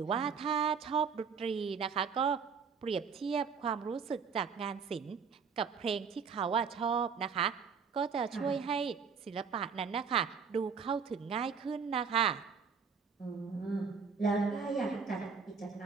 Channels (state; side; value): quieter; left; 6.0 dB